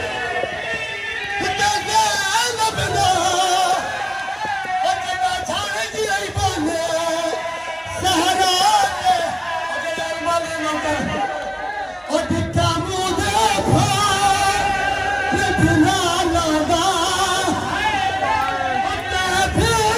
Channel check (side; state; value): both; identical; correlation 1.00